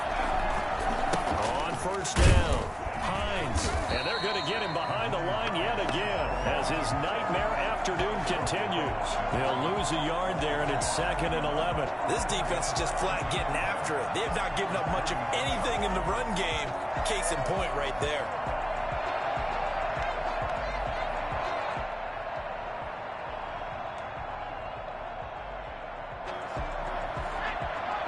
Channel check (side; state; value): both; identical; correlation 1.00